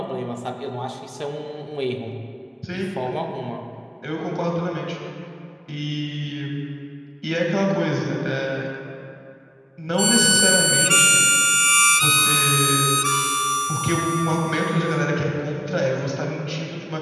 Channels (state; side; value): identical; both; correlation 1.00